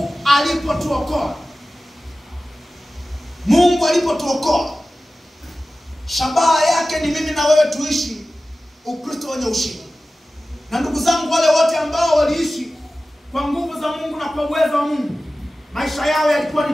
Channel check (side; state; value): both; normal; correlation 0.96